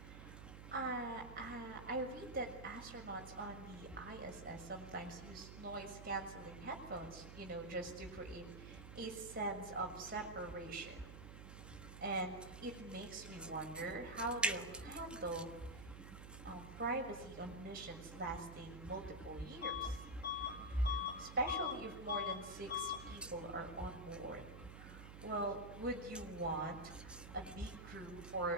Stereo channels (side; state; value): right; noise; hum, 11 dB below the sound